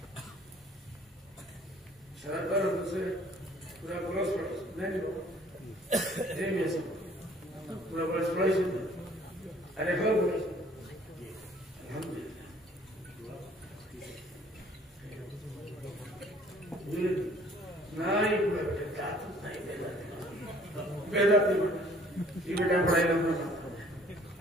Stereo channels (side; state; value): both; normal; correlation 0.56